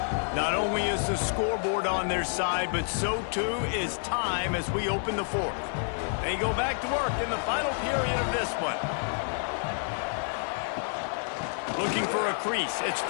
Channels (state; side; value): silent; right; digital silence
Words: Not only is the scoreboard on their side, but so too is time as we open the 4th. They go back to work in the final period of this one. Looking for a crease. It's